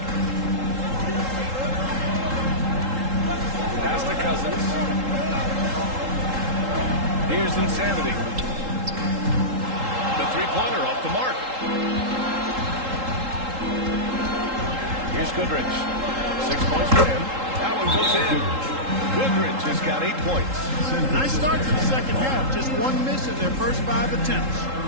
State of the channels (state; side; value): late; left; 3.8 ms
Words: Pass to Cousins. Here's Insanity. The three-pointer off the mark. Here's Goodrich. 6 points for him. That one goes in. Goodrich has got 8 points. Nice start to the second half. Just 1 miss in their first 5 attempts.